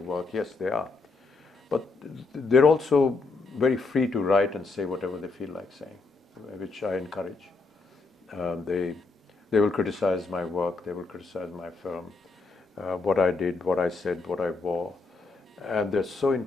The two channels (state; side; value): quieter; right; 4.0 dB